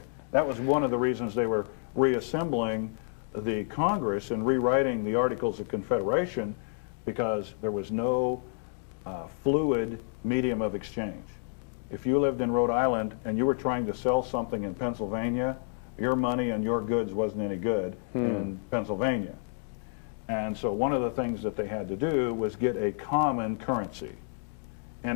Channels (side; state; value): right; silent; digital silence